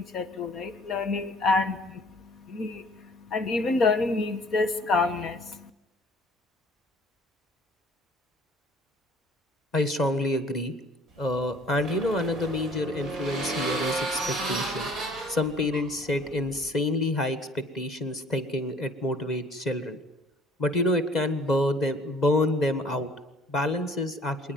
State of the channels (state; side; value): normal; both; correlation 0.54